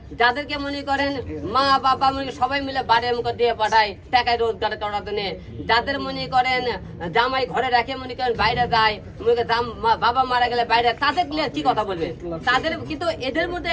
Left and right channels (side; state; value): both; identical; correlation 1.00